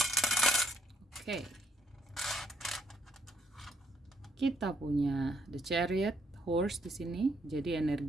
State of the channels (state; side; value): normal; both; correlation 0.70